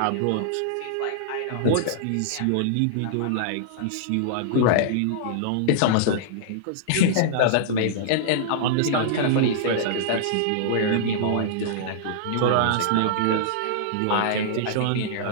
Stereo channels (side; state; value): both; different; correlation -0.02